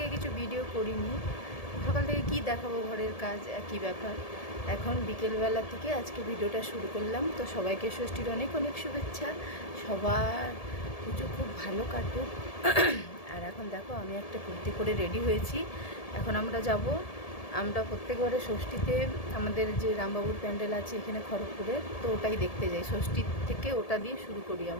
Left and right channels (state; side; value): late; right; 1.7 ms